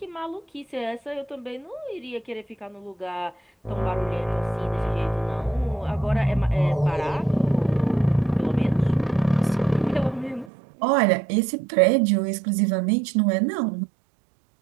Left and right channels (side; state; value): left; drops out; at 10.5 s